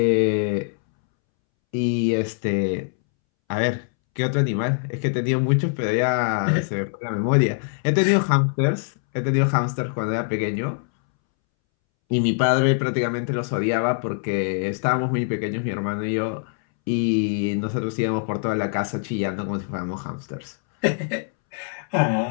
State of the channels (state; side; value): silent; right; 63 dB below the other